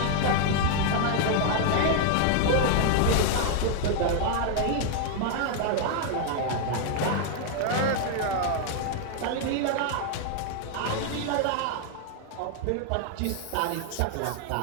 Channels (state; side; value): different; both; correlation 0.00